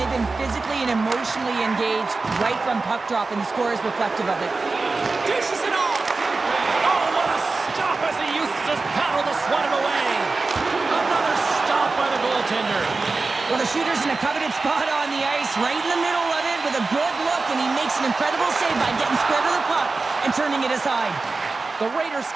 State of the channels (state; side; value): quieter; left; 3.8 dB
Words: they've been physically and emotionally engaged right from puck drop, and the score is reflective of it. Dishes it off. Oh, what a stop as he used to just paddle to swat it away. Another stop by the goaltender. Well, the shooter's in a coveted spot on the ice, right in the middle of it with a good look, and he makes an incredible save by getting square to the puck and turning it aside. The Raiders